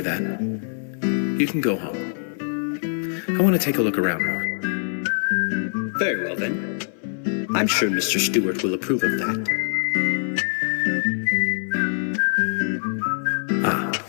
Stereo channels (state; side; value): silent; right; 58 dB below the other